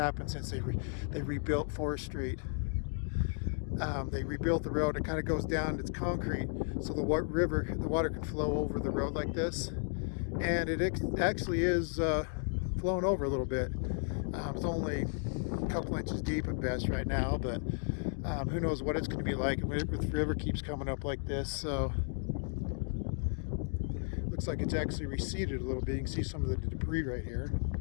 since they rebuilt Forest Street. They rebuilt the road. It kind of goes down. It's concrete, so the water can flow over the road like this, and it actually is flowing over a little bit. It's only a couple inches deep at best right now, but who knows what it's going to be like if the river keeps coming up like this. So looks like it's actually receded a little bit. You can see some of the debris right here,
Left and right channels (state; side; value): silent; right; 55 dB below the other